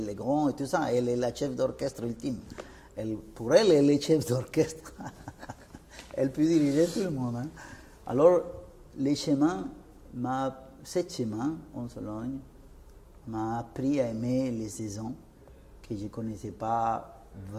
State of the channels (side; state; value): both; identical; correlation 1.00